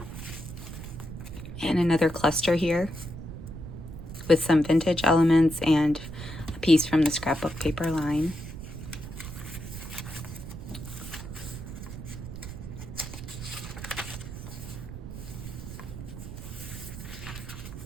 And another cluster here with some vintage elements and a piece from the scrapbook paper line.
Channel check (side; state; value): right; noise; rumble, 10 dB below the sound